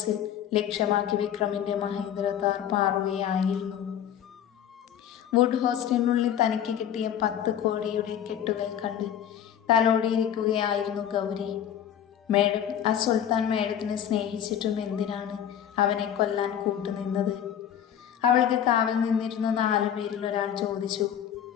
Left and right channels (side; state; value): right; quieter; 9.7 dB